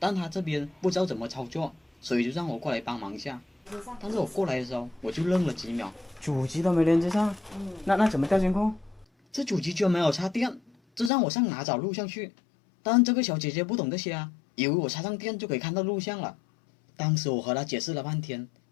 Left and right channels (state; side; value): drops out; right; at 11.1 s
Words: 她这边不知道怎么操作，所以就让我过来帮忙一下。但是我过来的时候，我就愣了几秒，主机都没连接上，那怎么调监控？这主机居然没有插电，这让我上哪找录像去？但这个小姐姐不懂这些啊，以为我插上电就可以看到录像了。当时我和她解释了半天，